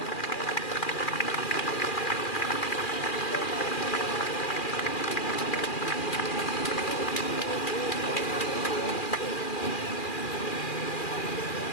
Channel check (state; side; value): late; right; 2.4 ms